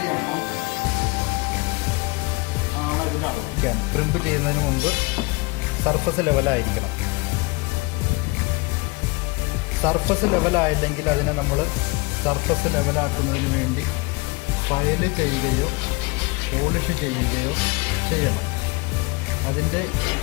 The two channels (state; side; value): quieter; right; 26.3 dB